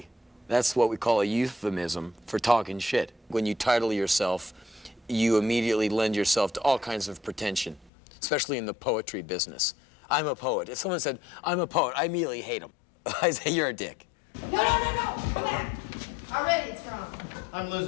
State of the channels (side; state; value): right; drops out; at 7.9 s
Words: That's what we call a euphemism for talking shit. When you title yourself, you immediately lend yourself to all kinds of pretension, especially in the poetry business. I'm a poet. If someone said, I'm a poet, I immediately hate them. I say, you're a dick. No, come back. Already it's wrong. I'm